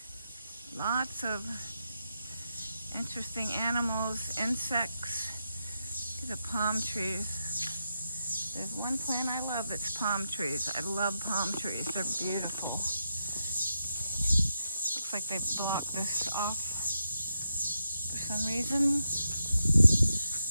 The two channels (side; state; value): both; inverted; correlation -0.85